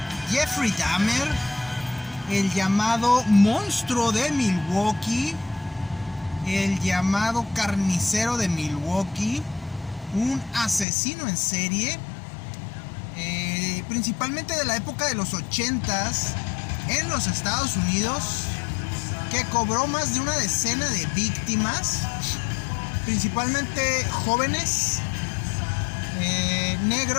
Jeffrey Dahmer, el llamado monstruo de Milwaukee, el llamado carnicero de Milwaukee, un asesino en serie, principalmente de la época de los 80s en los Estados Unidos, que cobró más de una decena de víctimas, principalmente jóvenes,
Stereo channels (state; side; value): drops out; right; at 10.9 s